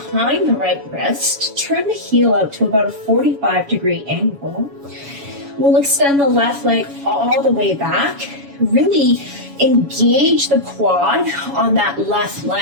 the right wrist, turn the heel out to about a 45-degree angle. We'll extend the left leg all the way back, really engage the quad on that left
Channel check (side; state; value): left; late; 7.1 ms